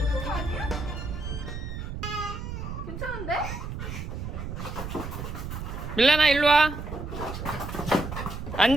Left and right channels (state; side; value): noise; right; rumble, 6 dB below the sound